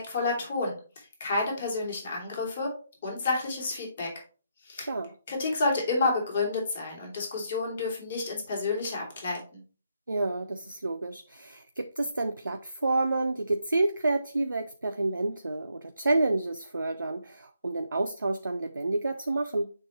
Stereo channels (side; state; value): both; inverted; correlation -0.76